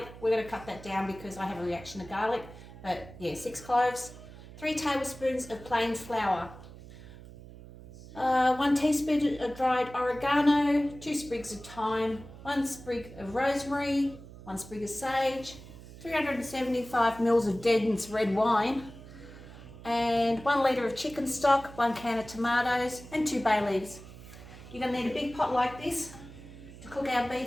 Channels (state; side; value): noise; right; hum, 17 dB below the sound